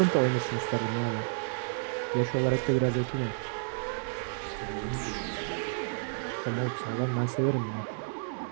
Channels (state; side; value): silent; left; digital silence